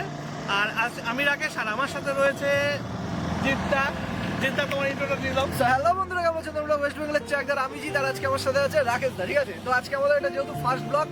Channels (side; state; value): right; noise; hum, 27 dB below the sound